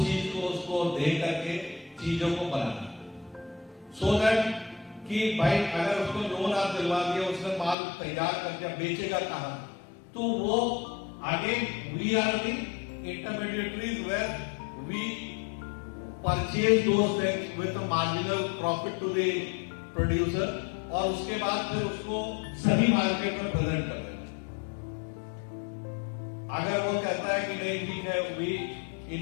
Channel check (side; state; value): right; drops out; at 7.8 s